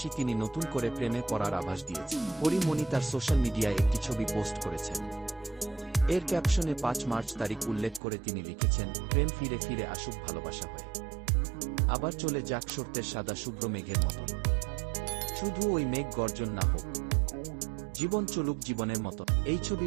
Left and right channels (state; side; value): drops out; left; at 8.0 s